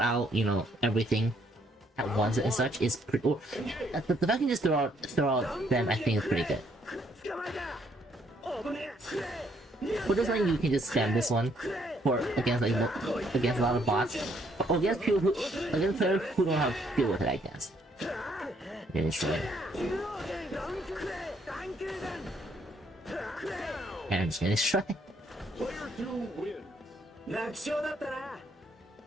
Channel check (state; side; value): normal; both; correlation 0.69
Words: out everything at once and such is pretty. Or, the fact you can just throw out them, I think is pretty good. For this one, you can just spam this one against a lot of bots, or against players who don't have to deal with it, I guess. Then it's right. And I'm just gonna try. two wins.